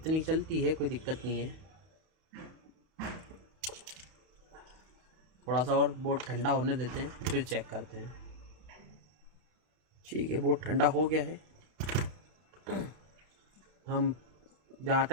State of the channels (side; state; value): left; late; 32 ms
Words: चलती है, कोई दिक्कत नहीं है। थोड़ा सा और बोर्ड ठंडा होने देते हैं फिर चेक करते हैं। ठीक है, बोर्ड ठंडा हो गया है। हम जहाँ